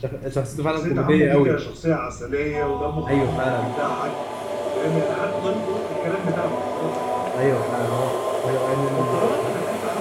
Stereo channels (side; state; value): both; identical; correlation 1.00